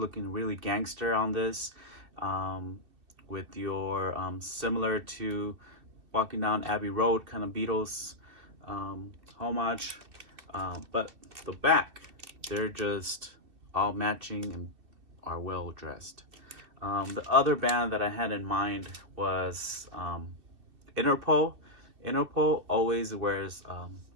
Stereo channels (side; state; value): left; late; 2.7 ms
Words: really gangster on this, with your similar to Walking Down Abbey Road kind of Beatles homage, but the back, they're just all matching and are well dressed. The other band that I had in mind was Interpol. Interpol always wears